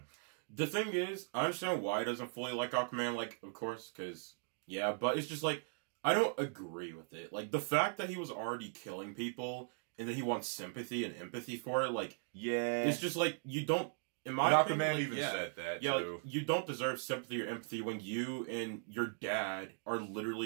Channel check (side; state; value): left; silent; 52 dB below the other